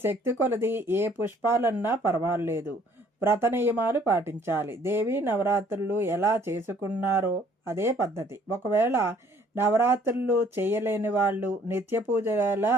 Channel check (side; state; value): both; normal; correlation 0.60